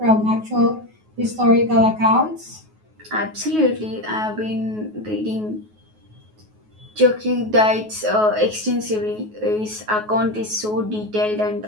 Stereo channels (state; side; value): late; left; 9.4 ms